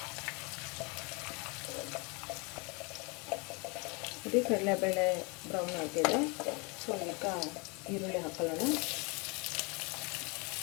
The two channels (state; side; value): quieter; right; 30.4 dB